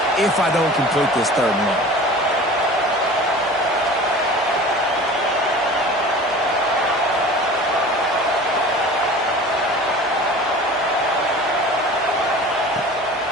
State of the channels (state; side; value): normal; both; correlation 0.40